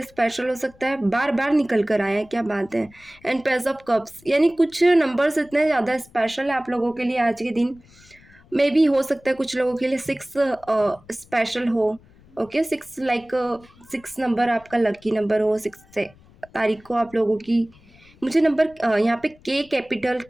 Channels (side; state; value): left; noise; rumble, 27 dB below the sound